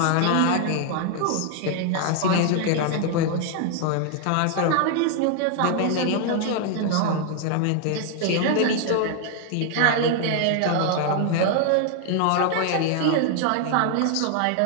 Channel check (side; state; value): both; different; correlation 0.00